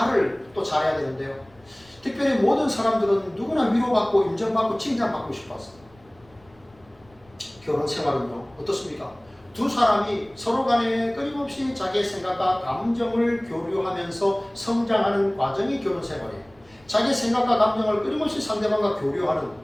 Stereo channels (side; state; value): left; noise; rumble, 29 dB below the sound